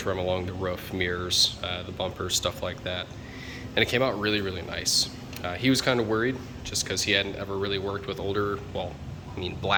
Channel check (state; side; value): identical; both; correlation 1.00